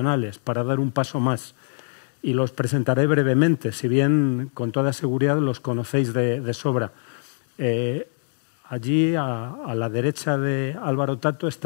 para dar un paso más, y los presentaré brevemente, si bien con toda seguridad los conocéis de sobra. Allí, a la derecha de Álvaro Tato,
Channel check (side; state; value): right; silent; digital silence